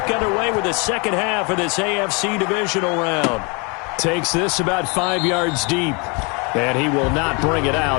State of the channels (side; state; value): right; quieter; 31.6 dB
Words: underway with the second half of this AFC divisional round. Takes this about 5 yards deep, and he will not bring it out.